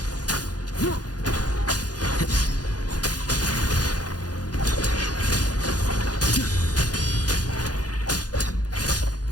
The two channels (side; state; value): right; late; 0.69 ms